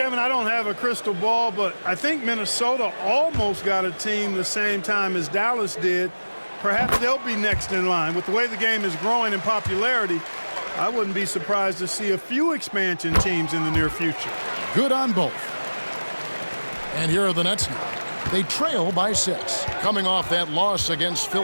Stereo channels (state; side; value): inverted; both; correlation -1.00